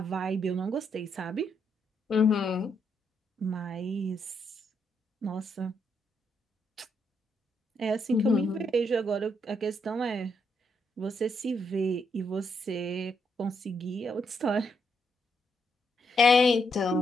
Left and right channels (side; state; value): both; normal; correlation 0.77